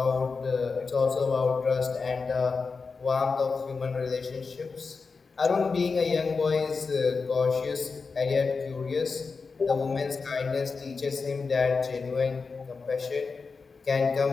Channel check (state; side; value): quieter; right; 4.6 dB